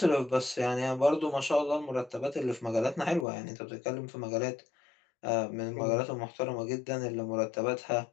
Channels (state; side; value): drops out; right; at 3.2 s